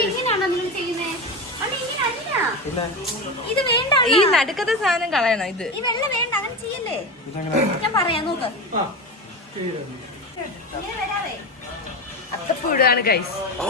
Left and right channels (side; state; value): both; normal; correlation 0.22